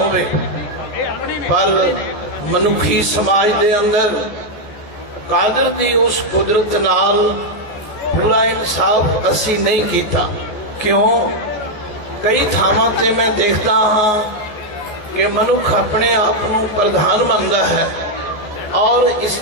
पर मनुखी समाज दे अंदर कादर दी उस कुदरत नाल पूरा इंसाफ असी नहीं कीता। क्यों? कई थावां ते मैं देखता हाँ कि मनुख अपने आप को प्रधान मानता है और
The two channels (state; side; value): late; right; 14 ms